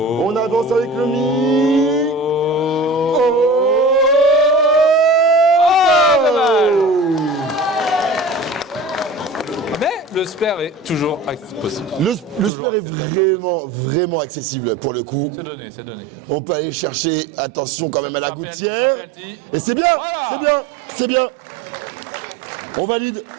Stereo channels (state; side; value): drops out; left; at 12.5 s